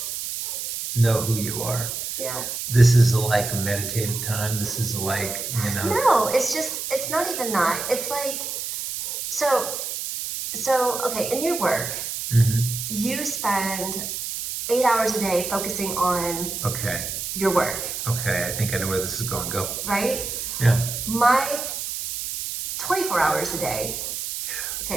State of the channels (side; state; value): right; noise; hiss, 5 dB below the sound